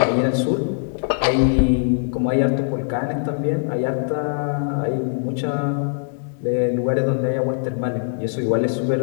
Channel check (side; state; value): right; silent; digital silence